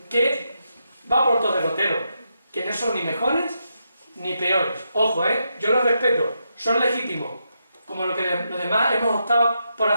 que va por todo derrotero, que no son ni mejores ni peores. Ojo, yo los respeto, son legítimos, como lo que los demás hemos optado por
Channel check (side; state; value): both; inverted; correlation -0.83